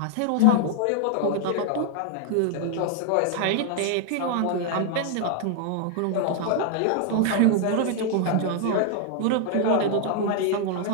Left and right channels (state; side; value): different; both; correlation 0.00